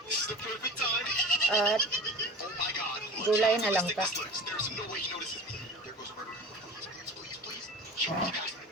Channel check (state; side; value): normal; both; correlation 0.35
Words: at gulay na langka.